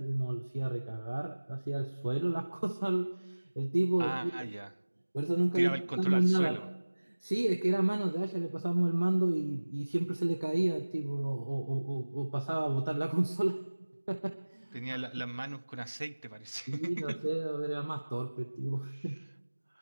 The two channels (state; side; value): inverted; both; correlation -1.00